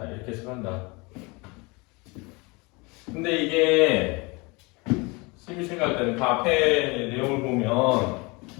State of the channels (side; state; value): right; quieter; 26.9 dB